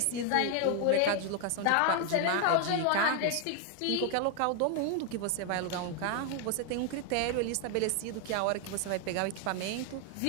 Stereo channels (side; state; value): both; different; correlation 0.01